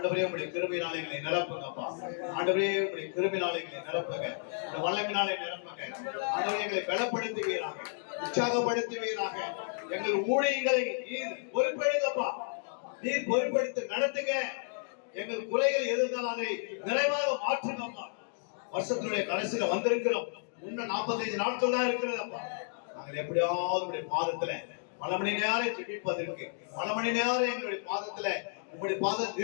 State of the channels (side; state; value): right; silent; digital silence